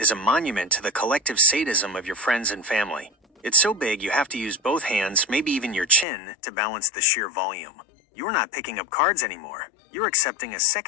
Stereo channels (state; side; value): drops out; right; at 6.1 s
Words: a monument to the collective sadism of your friends and family. It's so big you have to use both hands, maybe even your chin, to balance the sheer volume. You're not picking up cards anymore. You're accepting a